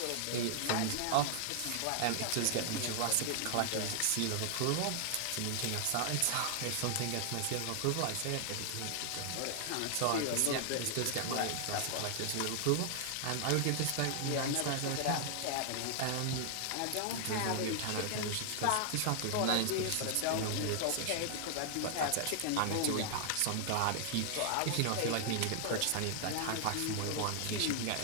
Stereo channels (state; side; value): different; both; correlation 0.00